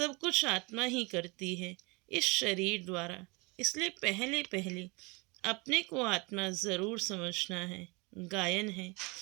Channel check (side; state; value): left; quieter; 27.7 dB